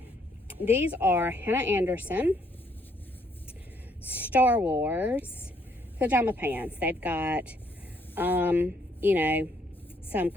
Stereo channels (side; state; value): both; normal; correlation 0.70